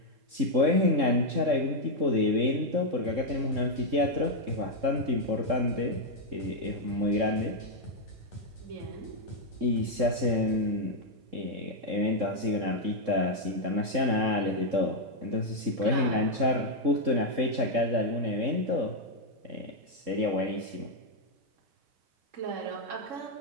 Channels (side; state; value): left; late; 3.7 ms